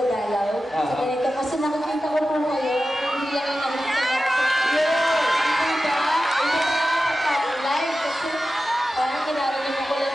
sa ganito. Kasi nakikita ko po kayo, hindi lang yung naman sa diba? Hindi pa nakapag-live kasi parang kinarinig ko lang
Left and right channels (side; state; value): both; normal; correlation 0.93